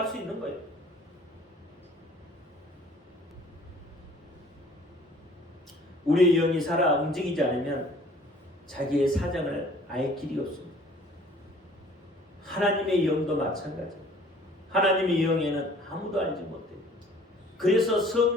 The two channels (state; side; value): normal; both; correlation 0.53